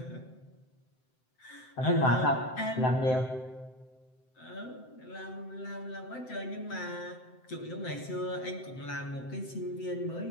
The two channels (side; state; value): right; late; 7.8 ms